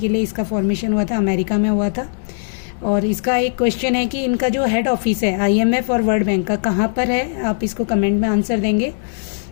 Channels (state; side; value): silent; right; digital silence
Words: लिए इसका फॉर्मेशन हुआ था, अमेरिका में हुआ था. और इसका एक क्वेश्चन है कि इनका जो हेड ऑफिस है IMF और वर्ल्ड बैंक का कहाँ पर है. आप इसको कमेंट में आंसर देंगे.